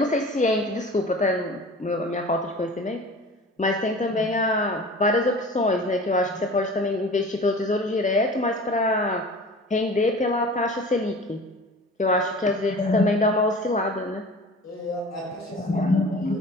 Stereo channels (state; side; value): normal; both; correlation 0.40